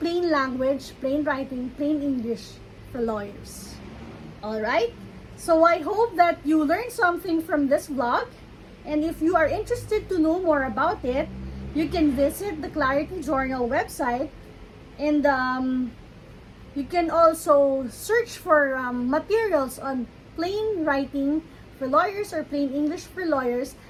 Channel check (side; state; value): both; identical; correlation 1.00